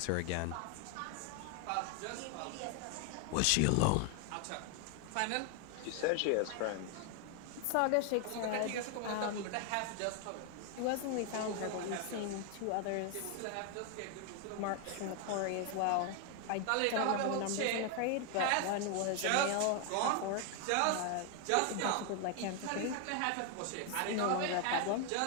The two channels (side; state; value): both; different; correlation 0.00